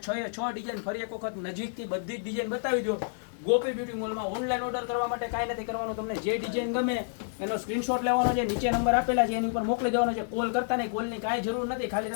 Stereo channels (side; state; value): right; silent; 58 dB below the other